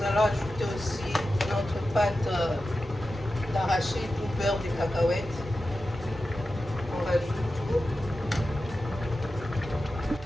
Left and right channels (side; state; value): both; normal; correlation 0.92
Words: allons ajouter aussi notre pâte d'arachide ou beurre de cacahuètes. On rajoute tout.